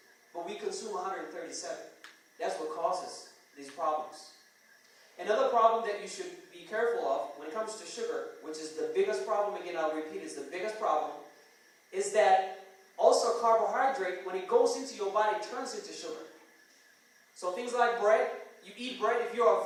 But we consume 137. That's what causes these problems. Another problem that you should be careful of when it comes to sugar, which is the biggest problem, again I'll repeat, is the biggest problem, is that also carbohydrate, when it goes into your body, turns into sugar. So things like bread, you eat bread, if you're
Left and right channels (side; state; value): both; identical; correlation 1.00